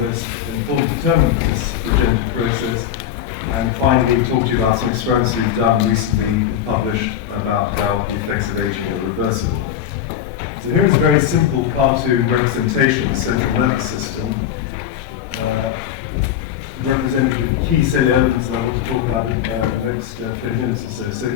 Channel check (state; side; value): quieter; right; 10.1 dB